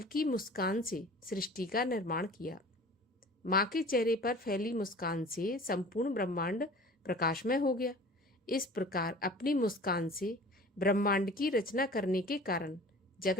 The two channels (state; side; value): normal; both; correlation 0.43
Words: मुस्कान से सृष्टि का निर्माण किया। माँ के चेहरे पर फैली मुस्कान से संपूर्ण ब्रह्मांड प्रकाशमय हो गया। इस प्रकार अपनी मुस्कान से ब्रह्मांड की रचना करने के कारण